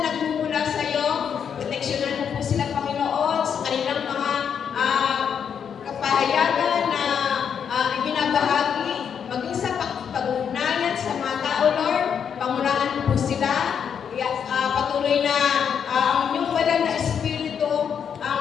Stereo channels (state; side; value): quieter; right; 7.6 dB